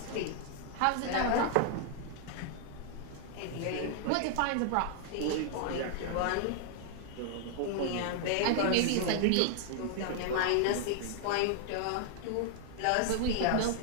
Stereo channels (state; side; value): different; both; correlation 0.00